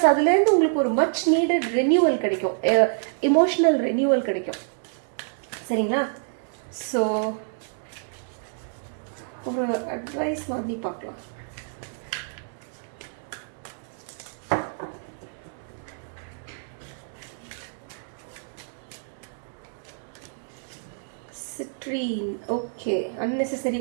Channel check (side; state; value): left; silent; digital silence